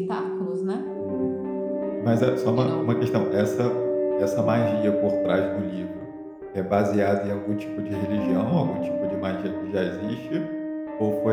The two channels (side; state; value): both; identical; correlation 1.00